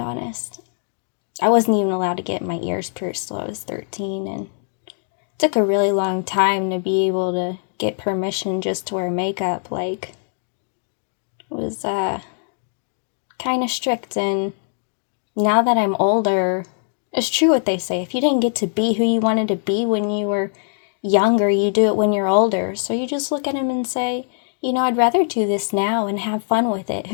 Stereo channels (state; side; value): silent; right; digital silence